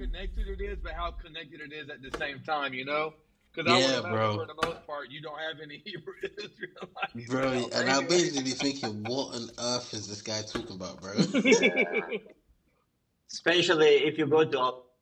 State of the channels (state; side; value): identical; both; correlation 1.00